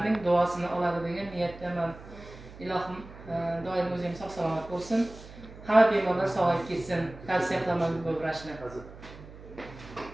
duosini oladi degan niyatdaman. Ilohim doim o'zim sog'-salomat bo'lsin. Hamma bemorlar sog'ayib ketsin. Tavsiya qilaman bu vrachni.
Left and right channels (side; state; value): right; noise; hum, 17 dB below the sound